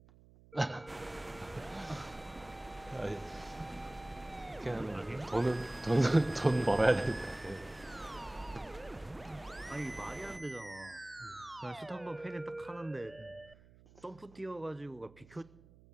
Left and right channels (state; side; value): noise; right; hum, 24 dB below the sound